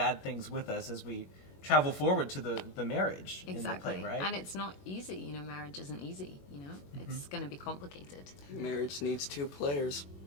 things with us as we travel forward to the marriage Exactly. in the play, right? And it's not easy, you know, marriage isn't easy, you know? It's going to be complicated. Marriage needs two players.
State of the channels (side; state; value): right; late; 21 ms